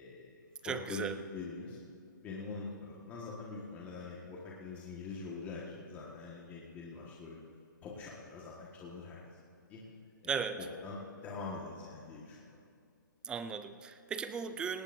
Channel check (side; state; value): both; normal; correlation 0.17